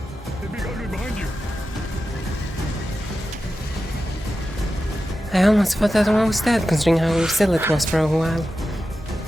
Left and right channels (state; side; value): normal; both; correlation 0.92